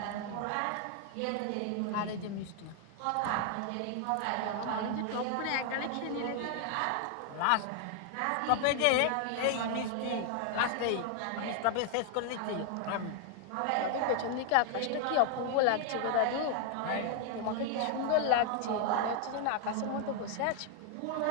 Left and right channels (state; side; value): different; both; correlation 0.00